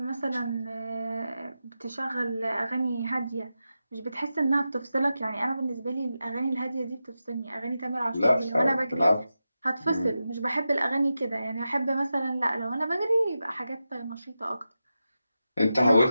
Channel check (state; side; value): inverted; both; correlation -0.91